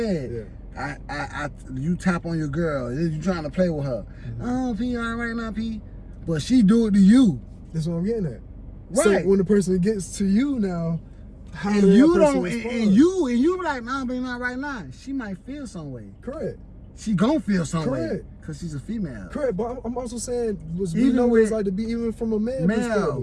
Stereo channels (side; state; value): both; identical; correlation 1.00